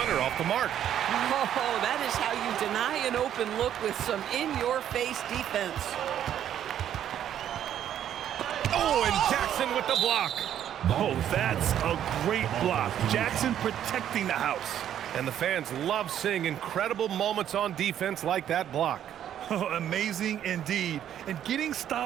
off the mark. Oh, that is how you deny an open look with some in-your-face defense. Oh, and Jackson with the block. Oh, that's a great block. Jackson protecting the house. And the fans love seeing incredible moments on defense like that block. Oh, amazing indeed. And getting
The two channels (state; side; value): quieter; left; 10.4 dB